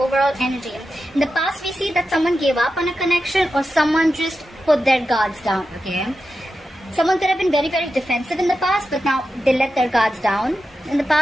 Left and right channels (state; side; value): normal; both; correlation 0.90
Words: energy. In the past, we see that someone gave up on a connection or someone just put their guards down. Okay. Someone could have been very, very defensive in the past, but now they let their guards down. In the